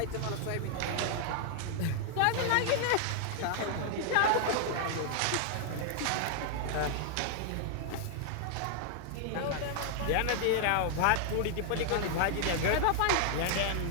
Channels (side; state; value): both; different; correlation 0.00